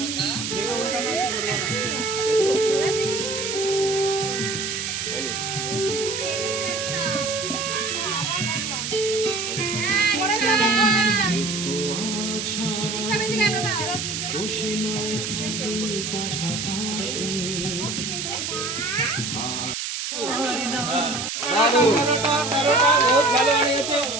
তেরোটা বহুত ভালো বানিয়েছে।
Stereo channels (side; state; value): right; noise; hiss, 4 dB below the sound